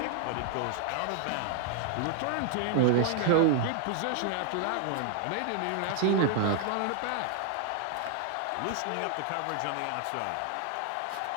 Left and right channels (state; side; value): different; both; correlation 0.00